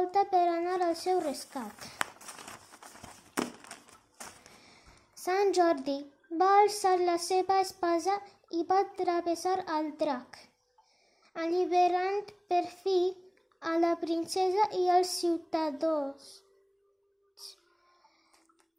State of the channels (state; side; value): identical; both; correlation 1.00